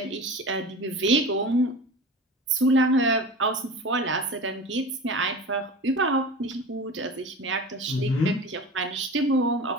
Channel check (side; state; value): both; normal; correlation 0.33